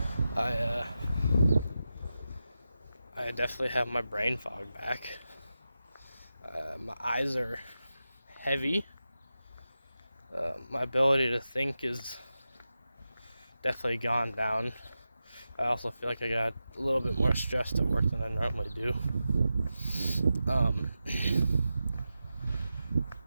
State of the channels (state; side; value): inverted; both; correlation -0.91